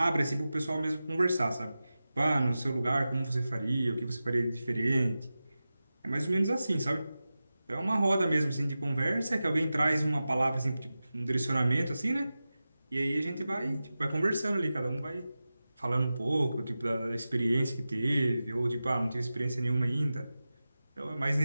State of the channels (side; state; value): both; inverted; correlation -0.94